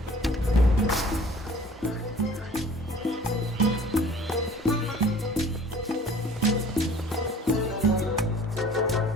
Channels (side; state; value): both; normal; correlation 0.49